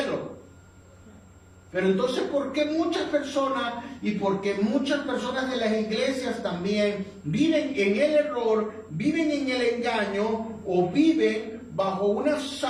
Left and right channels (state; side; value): identical; both; correlation 1.00